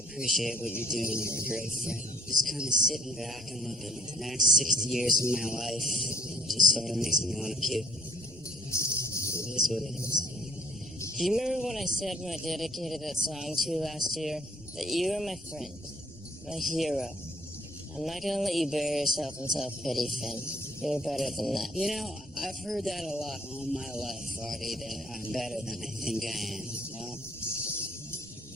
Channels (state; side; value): normal; both; correlation 0.62